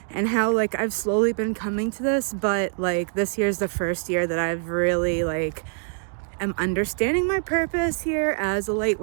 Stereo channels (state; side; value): silent; left; 62 dB below the other